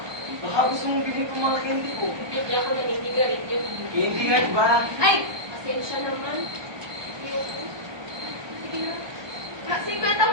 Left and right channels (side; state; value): left; late; 1.2 ms